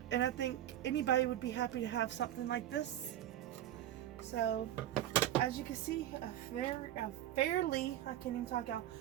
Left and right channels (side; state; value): left; quieter; 12.4 dB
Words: And I think anybody would be happy to have something like this. So, as you can see, a fairly, I can't even talk out,